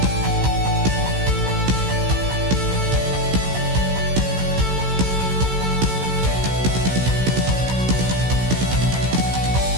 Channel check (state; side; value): late; left; 16 ms